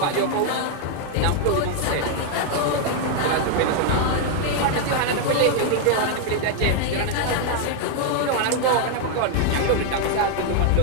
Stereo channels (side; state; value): both; different; correlation 0.00